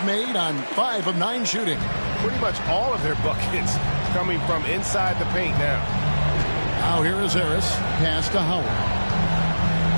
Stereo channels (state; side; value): inverted; both; correlation -1.00